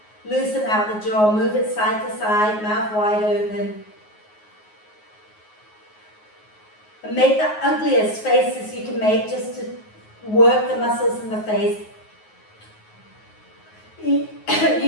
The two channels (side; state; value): right; late; 9.5 ms